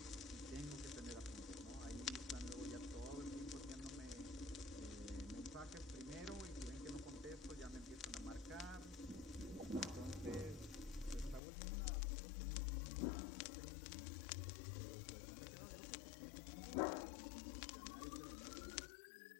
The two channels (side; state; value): right; drops out; at 11.4 s